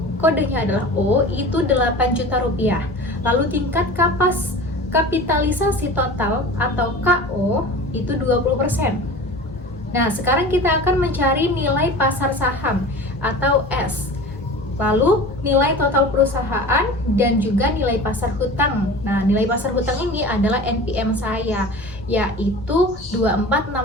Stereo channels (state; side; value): noise; left; hum, 20 dB below the sound